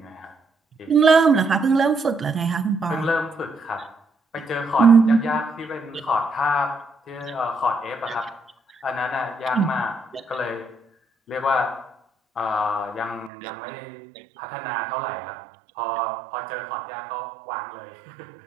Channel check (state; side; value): drops out; left; at 13.3 s